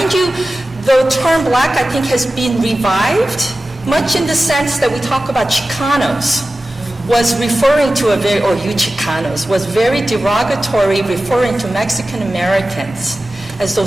you, the term black I think has been revived, much in the sense that we talk about Chicanos, was referring to you Chicanos, was very derogatory, referring to Mexican Americans as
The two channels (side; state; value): both; normal; correlation 0.95